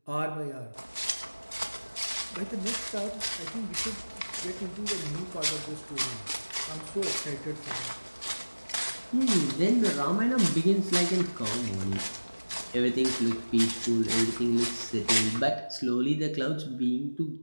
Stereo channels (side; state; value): both; inverted; correlation -1.00